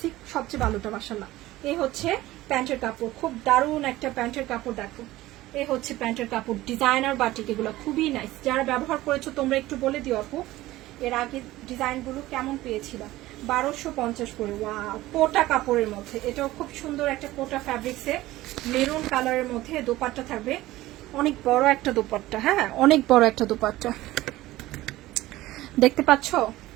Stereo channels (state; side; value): quieter; left; 16.9 dB